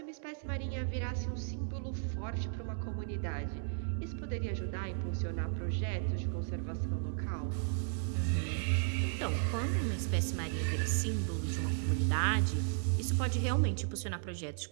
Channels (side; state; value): left; silent; digital silence